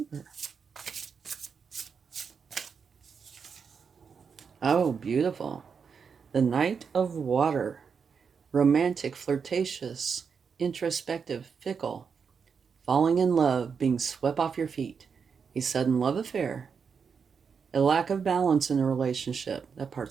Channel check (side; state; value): left; quieter; 6.1 dB